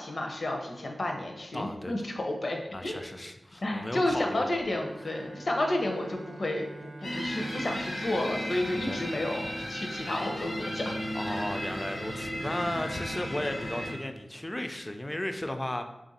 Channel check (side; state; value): both; normal; correlation 0.96